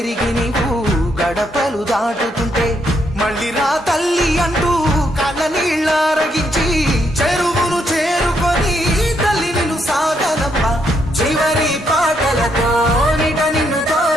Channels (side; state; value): both; normal; correlation 0.76